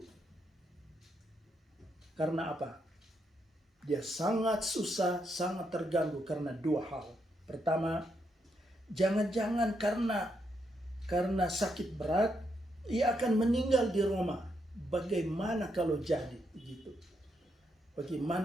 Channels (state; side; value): normal; both; correlation 0.79